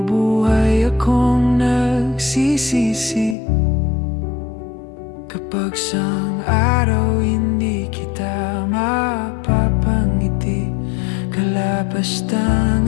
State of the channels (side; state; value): right; drops out; at 3.4 s